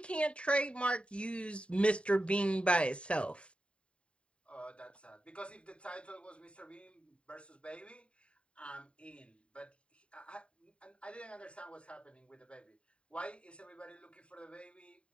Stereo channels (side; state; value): right; late; 0.059 ms